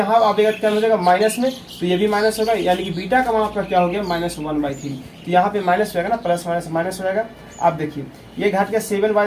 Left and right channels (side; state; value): both; identical; correlation 1.00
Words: आएगा क्या हो जाएगा माइनस में, तो ये भी माइनस होगा, यानी कि बीटा का मान आपका क्या हो गया -1/3। तो यहाँ पे माइनस हो जाएगा ना, प्लस माइनस माइनस हो जाएगा। आप देखिए ये घट के